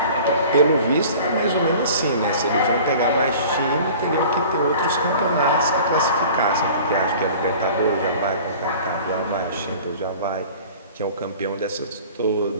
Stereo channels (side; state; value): both; inverted; correlation -0.44